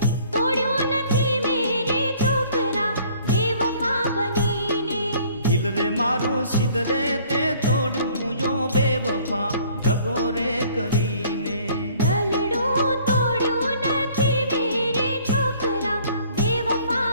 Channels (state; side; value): inverted; both; correlation -0.56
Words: तोड़्यो नथी मेरे छोकरा बेवफा बनीने। दिल रे मारू सिदरे ते तोड़ू जो बेवफा दगो रे करीने। दलड़ू तोड़्यो नथी मेरे छोकरा बेवफा